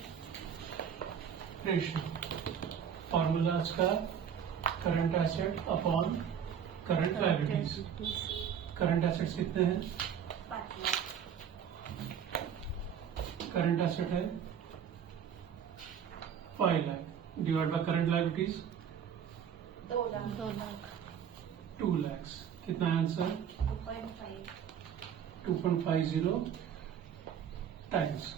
ratio. Formula का current asset upon current liabilities, current assets कितने हैं? 5 लाख. करंट एसेट है 5 lakh divide by current liabilities 2 lakh. 2 lakh. 2 lakh. कितना है आंसर? 2.5. 2.50 टाइम्स.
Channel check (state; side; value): quieter; left; 8.3 dB